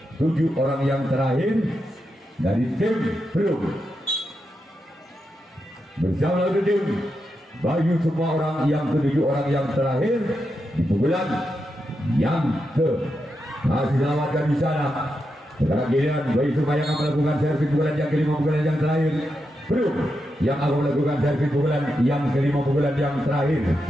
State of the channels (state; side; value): normal; both; correlation 0.86